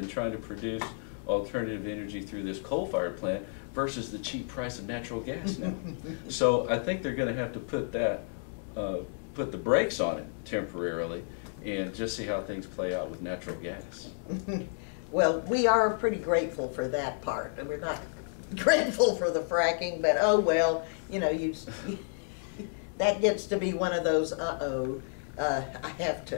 trying to produce alternative energy through this coal-fired plant versus the cheap price of natural gas now. So I think they're going to have to put the brakes on it temporarily and just see how things play out with natural gas. Well, we are pretty grateful for that part. We're not grateful for the fracking, but oh well, you know, that gets to be one of those I have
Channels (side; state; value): right; silent; digital silence